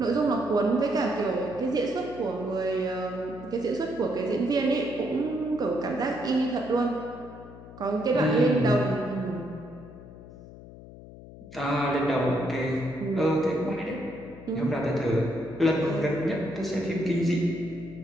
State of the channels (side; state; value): left; noise; hum, 17 dB below the sound